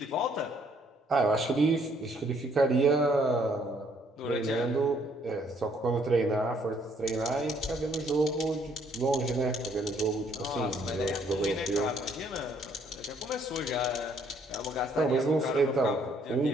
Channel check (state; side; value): normal; both; correlation 0.66